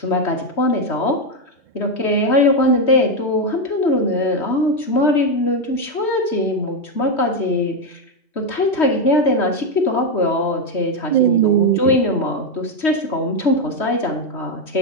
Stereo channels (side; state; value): right; late; 3.2 ms